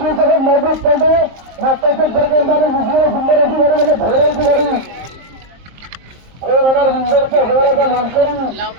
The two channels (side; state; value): left; late; 22 ms